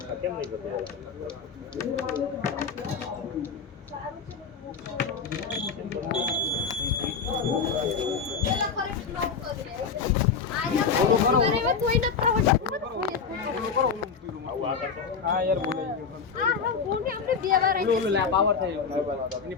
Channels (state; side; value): quieter; right; 5.8 dB